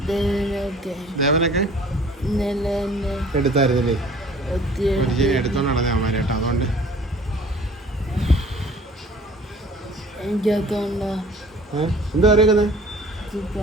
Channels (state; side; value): normal; both; correlation 0.50